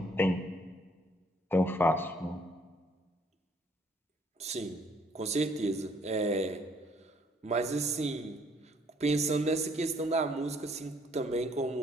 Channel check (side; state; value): both; normal; correlation 0.64